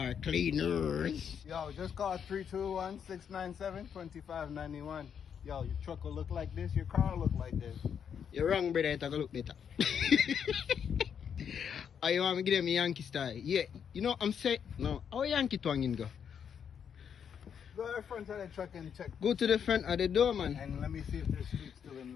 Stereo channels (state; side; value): quieter; right; 7.7 dB